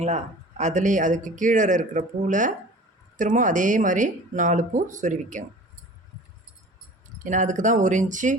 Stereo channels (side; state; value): both; normal; correlation 0.42